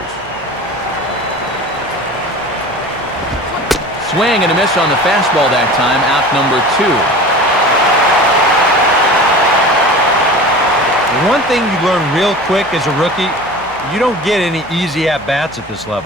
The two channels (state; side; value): normal; both; correlation 0.37